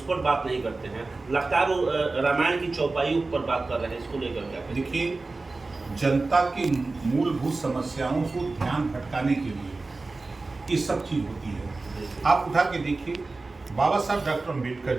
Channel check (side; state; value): left; quieter; 3.5 dB